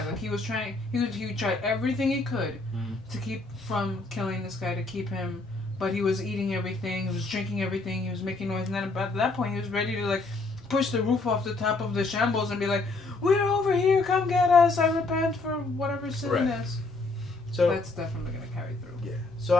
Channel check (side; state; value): right; quieter; 3.4 dB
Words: Like he was trying, he would try everything he could Mm-hmm. to keep from killing this guy, to keep him, but he was eating everything, he was drinking everything, he was making noise, and then at that point he was ready to like push the roof off the top of the shambles and be like, "We're over here, come get us! I repent for whatever sin Right. this." So That's definitely gonna carry through. yeah, so